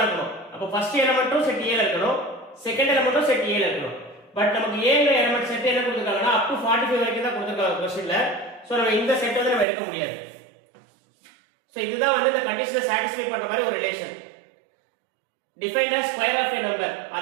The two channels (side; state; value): left; drops out; at 9.7 s